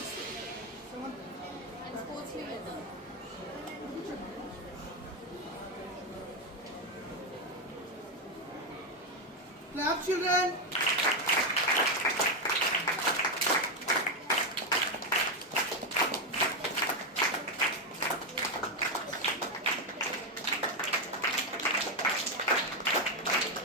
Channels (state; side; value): normal; both; correlation 0.07